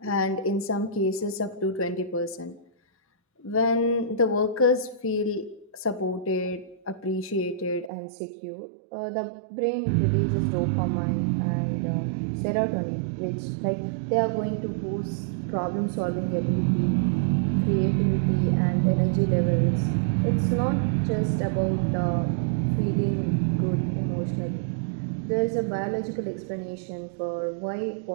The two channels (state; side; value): drops out; left; at 7.9 s